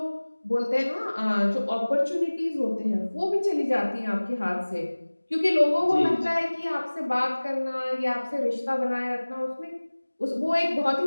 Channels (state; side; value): inverted; both; correlation -1.00